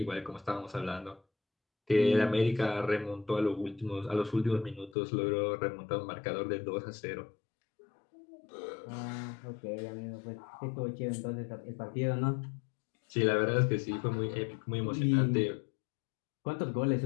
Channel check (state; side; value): drops out; right; at 5.0 s